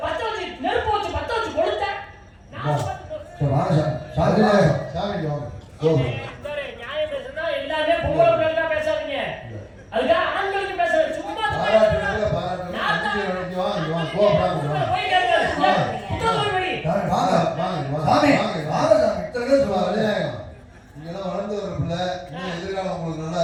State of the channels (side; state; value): both; identical; correlation 1.00